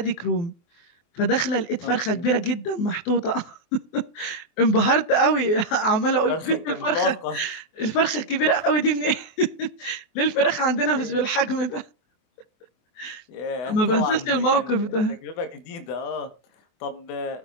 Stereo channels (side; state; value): right; late; 24 ms